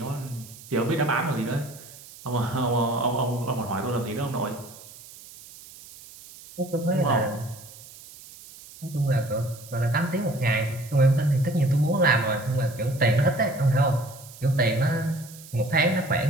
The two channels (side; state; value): right; noise; hiss, 19 dB below the sound